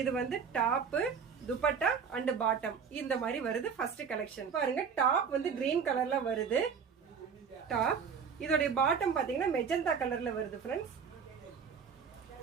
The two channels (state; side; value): quieter; left; 6.4 dB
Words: டாப் துப்பட்டா அண்ட் பாட்டம் இந்த மாதிரி வருது. ஃபர்ஸ்ட் கலெக்ஷன் பாருங்க, டாப் கிரீன் கலர்ல வருது. டாப் இதோட பாட்டம் பாத்தீங்கன்னா மெஜந்தா கலர்ல வருது फ्रेंड्स.